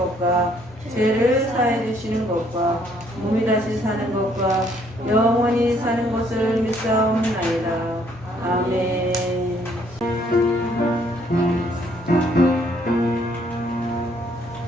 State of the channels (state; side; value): normal; both; correlation 0.66